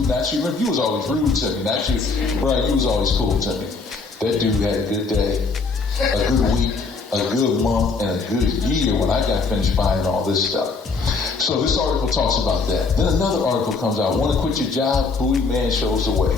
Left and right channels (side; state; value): right; quieter; 4.3 dB